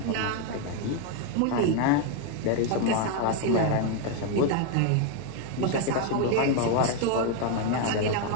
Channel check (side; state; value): both; different; correlation 0.01